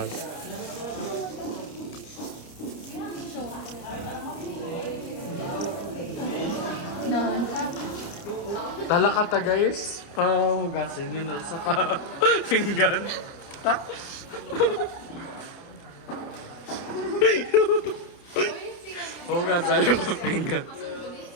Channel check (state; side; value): late; right; 29 ms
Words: Talakata guys. Pahugasin yun na sa pinggan. Tak. Hugasan yung pinggan.